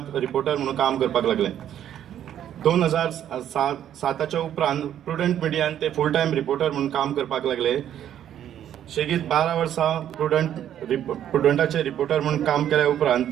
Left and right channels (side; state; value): left; quieter; 10.5 dB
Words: रिपोर्टर म्हणून काम करपाक लागले. 2007च्या उपरांत प्रुडंट मिडियान ते फुल टायम रिपोर्टर म्हणून काम करपाक लागले. शेगीत 12 वर्सां प्रुडंटाचे रिपोर्टर म्हणून काम केल्या उपरांत